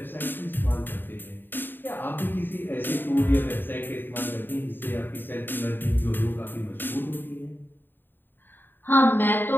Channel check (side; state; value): right; late; 0.094 ms